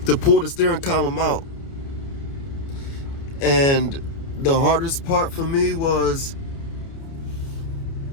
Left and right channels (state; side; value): late; right; 30 ms